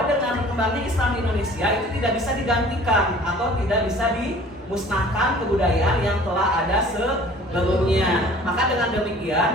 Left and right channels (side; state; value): both; normal; correlation 0.49